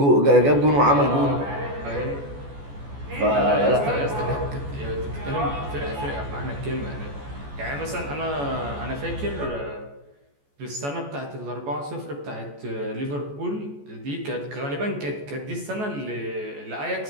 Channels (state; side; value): late; left; 14 ms